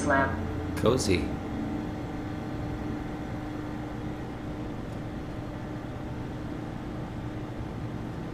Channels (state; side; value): identical; both; correlation 1.00